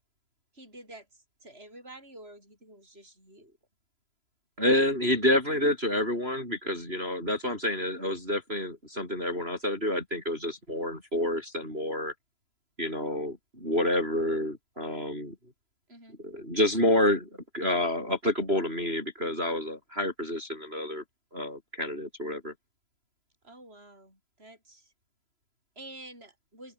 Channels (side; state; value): left; late; 3.0 ms